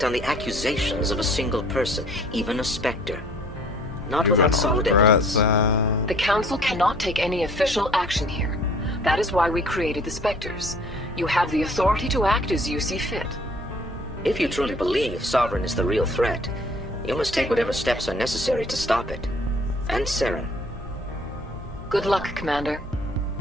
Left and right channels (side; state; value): both; normal; correlation 0.55